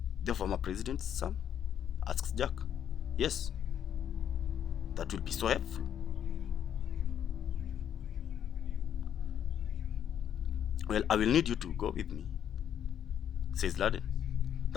The former president's son? Asks Jack. Yes. That will be so helpful. Well, I will need you to go with me, says Laden.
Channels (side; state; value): right; quieter; 9.4 dB